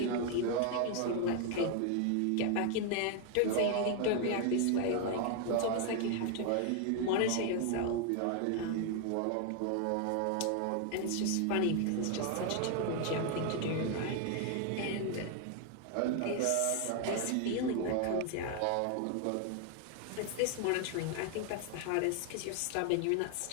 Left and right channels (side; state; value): both; different; correlation 0.01